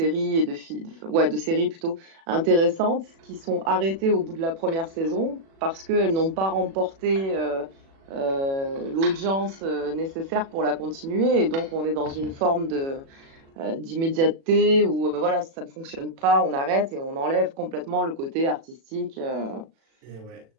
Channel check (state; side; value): late; left; 36 ms